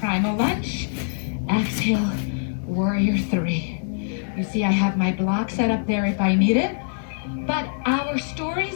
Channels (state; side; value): silent; right; 61 dB below the other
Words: primal lunge. Exhale, warrior 3. You see I have my block set up there if I need it. But our stories